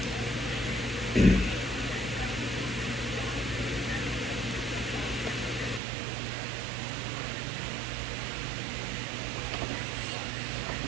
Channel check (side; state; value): left; drops out; at 5.8 s